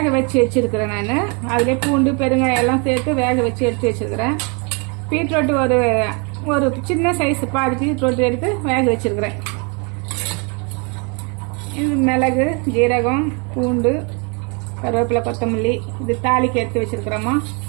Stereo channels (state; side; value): quieter; left; 34.1 dB